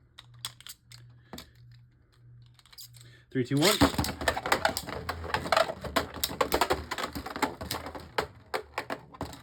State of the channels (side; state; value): both; identical; correlation 1.00